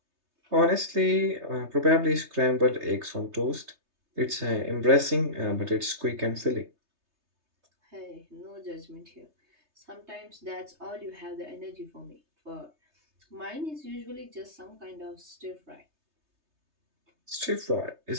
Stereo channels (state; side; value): late; left; 3.3 ms